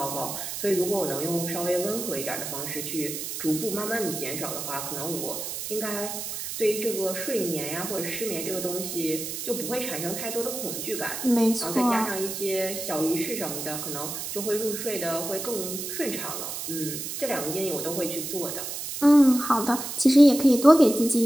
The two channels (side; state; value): right; noise; hiss, 6 dB below the sound